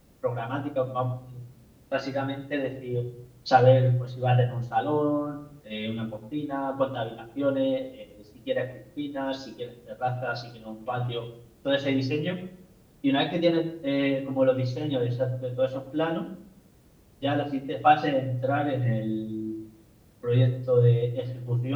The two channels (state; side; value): identical; both; correlation 1.00